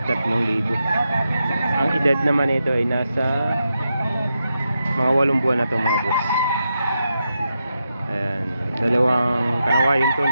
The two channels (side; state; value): both; inverted; correlation -0.87